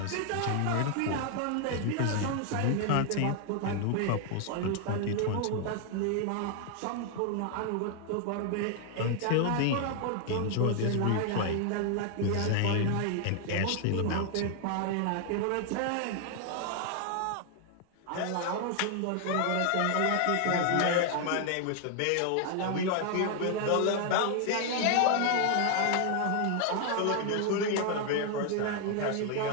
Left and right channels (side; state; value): both; different; correlation 0.00